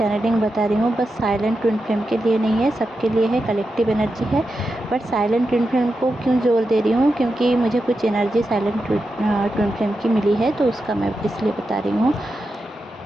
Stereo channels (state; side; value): normal; both; correlation 0.89